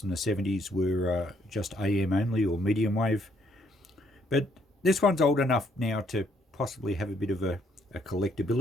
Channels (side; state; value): both; normal; correlation 0.69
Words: from the 70s, were just AM only or medium wave. But this one's old enough now to possibly have a bit of a